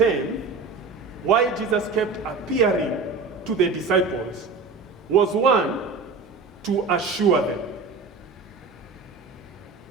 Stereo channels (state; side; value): quieter; left; 4.4 dB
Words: why Jesus kept appearing to the disciples was, one, to assure them.